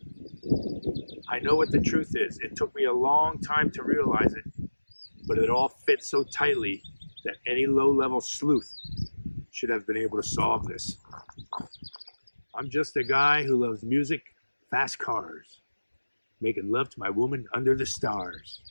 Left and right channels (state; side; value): inverted; both; correlation -1.00